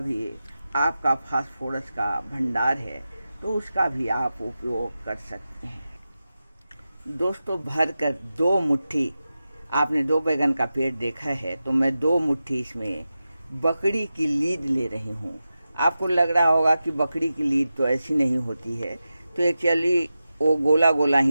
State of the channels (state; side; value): inverted; both; correlation -0.92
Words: आपका फास्फोरस का भंडार है, तो उसका भी आप उपयोग कर सकते हैं। दोस्तों भर कर 2 मुट्ठी, आपने 2 बैगन का पेड़ देखा है, तो मैं 2 मुट्ठी इसमें बकरी की लीद ले रही हूँ। आपको लग रहा होगा कि बकरी की लीद तो ऐसी नहीं होती है, तो एक्चुअली वो गोला गोला